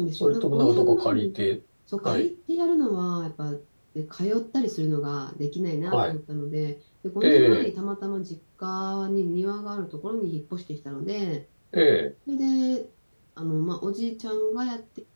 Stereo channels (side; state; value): both; inverted; correlation -1.00